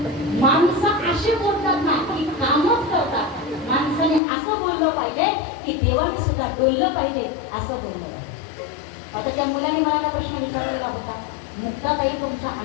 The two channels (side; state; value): right; drops out; at 4.2 s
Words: माणसं असे बोलतात ना की कामच करतात माणसाने असं बोललं पाहिजे की देवाने सुद्धा बोललं पाहिजे असं बोललं पाहिजे आता त्या मुलाने मला प्रश्न विचारलेला होता मुक्ताताई तुमच्या